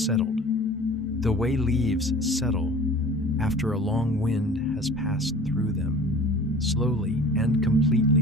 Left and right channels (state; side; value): normal; both; correlation 0.43